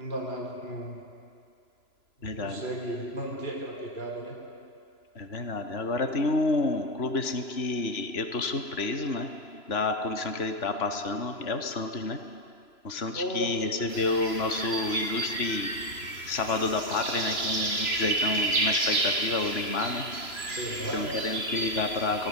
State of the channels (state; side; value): late; right; 3.0 ms